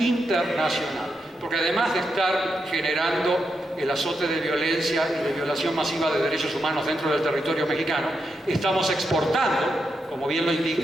Porque además de estar generando el azote de violencia y de violación masiva de derechos humanos dentro del territorio mexicano, estamos exportando, como bien lo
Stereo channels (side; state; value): both; normal; correlation 0.84